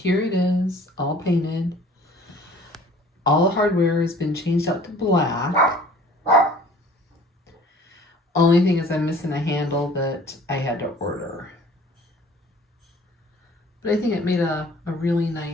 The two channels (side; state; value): both; normal; correlation 0.50